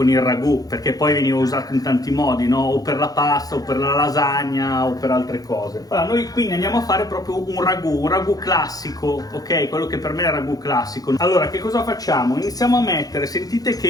il ragù, perché poi veniva usato in tanti modi, no? O per la pasta, o per la lasagna, o per altre cose. Allora, noi quindi andiamo a fare proprio un ragù classico, ok? Quello che per me è il ragù classico. Allora, che cosa facciamo? Iniziamo a mettere, sentite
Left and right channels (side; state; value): right; late; 0.18 ms